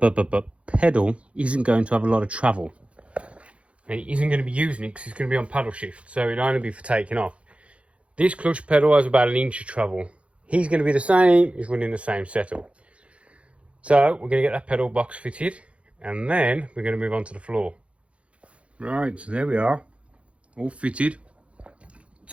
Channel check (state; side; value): late; left; 0.061 ms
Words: isn't going to have a lot of travel. And he isn't going to be using it because he's going to be on paddle shift, so it'll only be for taking off. This clutch pedal has about 1 inch of travel. He's going to be the same, he's running the same setup. So we're going to get that pedal box fitted, and then we're going to move on to the floor. Right, so there we are. All fitted,